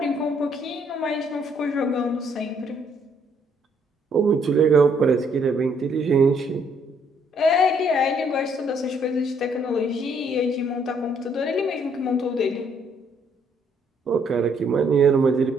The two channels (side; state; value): both; normal; correlation 0.68